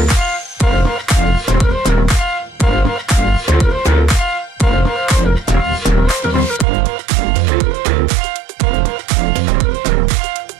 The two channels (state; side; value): drops out; left; at 6.7 s